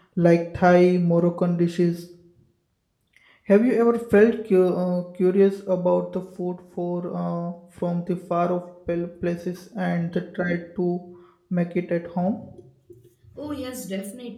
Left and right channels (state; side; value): identical; both; correlation 1.00